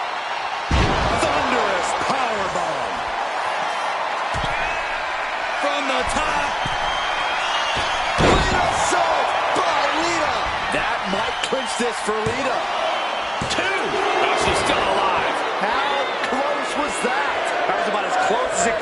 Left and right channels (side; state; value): both; identical; correlation 1.00